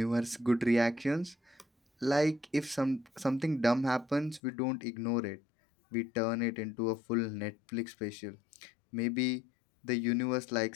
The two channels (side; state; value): right; drops out; at 4.4 s